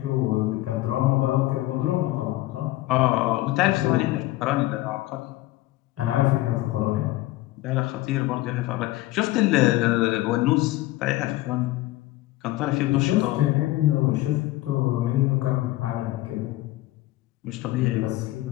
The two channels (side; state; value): right; quieter; 17.5 dB